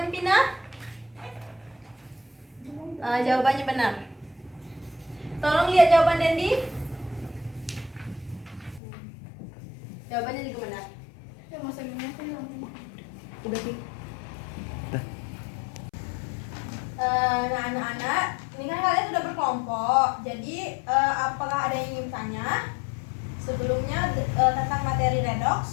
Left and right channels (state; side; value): drops out; right; at 8.8 s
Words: Pina. Jawabannya benar. Tolong lihat jawaban Dendi. Jawabannya juga benar. Udah sih. Nah, anak-anak, ini kan kalian sudah berkelompok. Jadi, apakah ada yang ingin tanya? Sebelumnya tentang materi